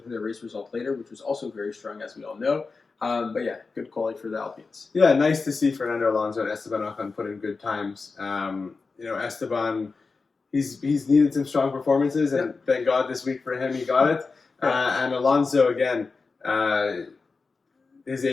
their race result later, which was also very strong, as we all know. Good quality for the Alpines. Yeah, nice to see Fernando Alonso and Esteban Ocon put in good times. Esteban, he's needed some strong performances, and thank God this week for him he got it. And Alonso again, his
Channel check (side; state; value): right; quieter; 4.3 dB